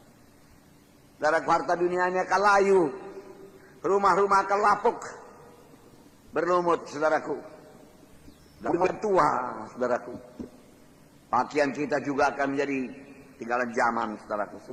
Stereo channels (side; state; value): both; identical; correlation 1.00